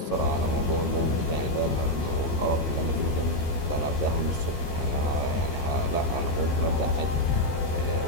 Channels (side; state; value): right; late; 12 ms